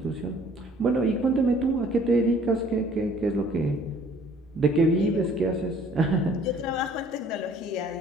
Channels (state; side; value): normal; both; correlation 0.56